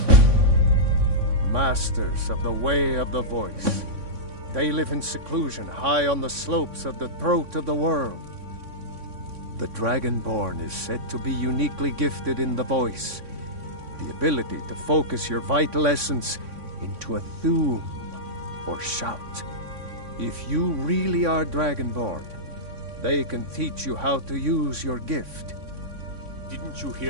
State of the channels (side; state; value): left; late; 3.6 ms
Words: Masters of the Way of the Voice. They live in seclusion high on the slopes of the throat of the world. The Dragonborn is said to be uniquely gifted in the voice, the ability to focus your vital essence into a thum or shout. If you really are Dragonborn, they can teach you how to use your gift. Didn't you